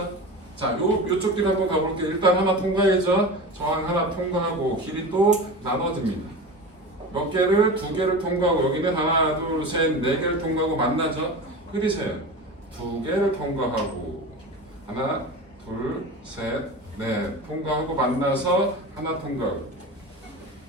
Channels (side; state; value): both; normal; correlation 0.30